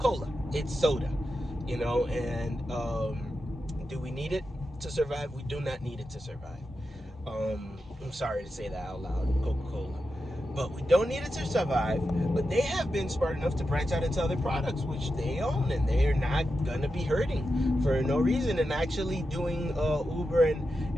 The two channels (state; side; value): normal; both; correlation 0.89